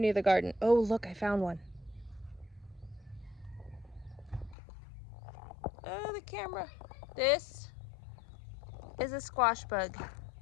the garden. Oh, look, I found one. Oh, the camera. This is a squash bug,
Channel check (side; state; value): right; drops out; at 4.5 s